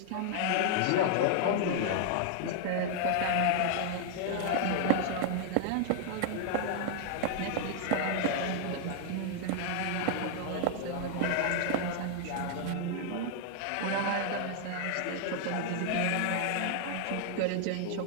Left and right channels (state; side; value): different; both; correlation -0.01